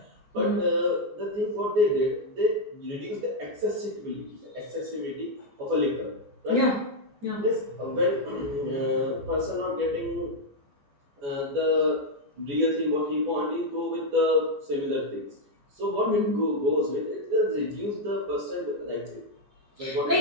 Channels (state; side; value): late; left; 14 ms